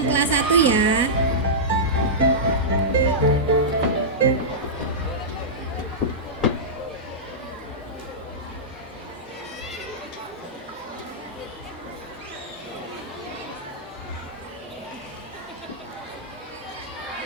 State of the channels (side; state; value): both; normal; correlation -0.13